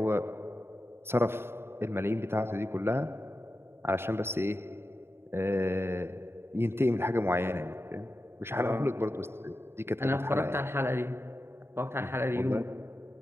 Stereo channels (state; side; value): late; left; 0.12 ms